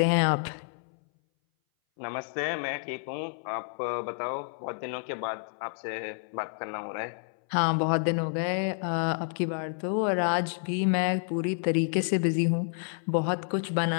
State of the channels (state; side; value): silent; right; 58 dB below the other